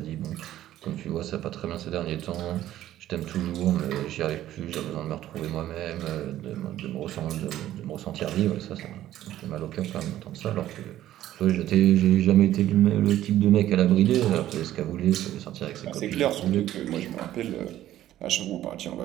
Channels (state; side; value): quieter; left; 13.2 dB